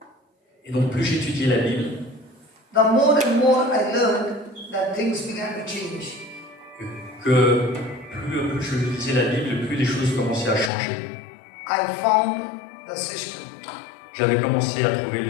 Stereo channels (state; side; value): drops out; right; at 10.7 s